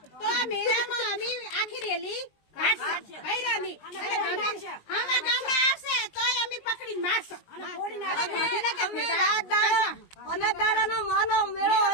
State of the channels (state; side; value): late; right; 19 ms